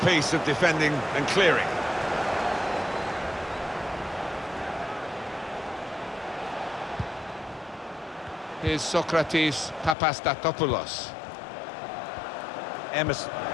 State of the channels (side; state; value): right; drops out; at 10.0 s